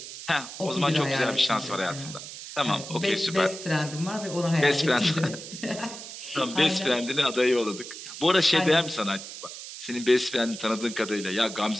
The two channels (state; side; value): noise; right; hiss, 11 dB below the sound